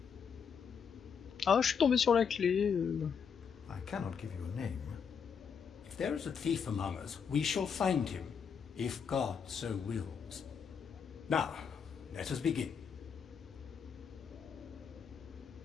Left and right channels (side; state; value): right; quieter; 6.7 dB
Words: Ah, je suis tombé sur la clé. I cannot give you a name. If there is a thief among us, we shall find him, if God so wills. Now, let us begin.